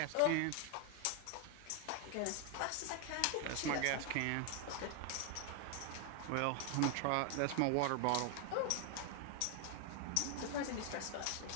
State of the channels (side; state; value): both; different; correlation 0.01